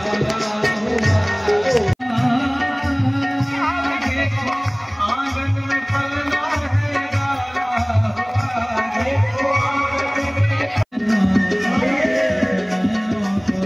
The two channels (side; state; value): both; identical; correlation 1.00